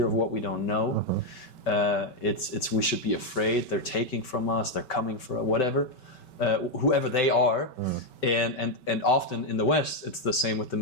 of what we don't know. It's we should be afraid. They're taking from us. They're coming for whatever, whoever they are. And often in the West, it's the same with the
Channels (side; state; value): right; late; 5.2 ms